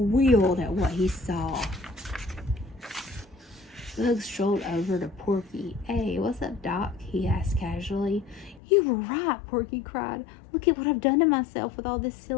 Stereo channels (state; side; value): drops out; right; at 8.6 s